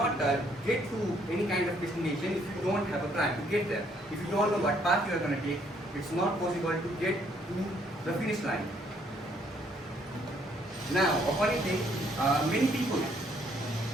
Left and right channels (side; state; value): both; normal; correlation 0.67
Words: get to any kind of destination if you don't have a plan to get there. If you don't know what path you are going to take, it's not possible to get to the finish line. Now, a funny thing, many people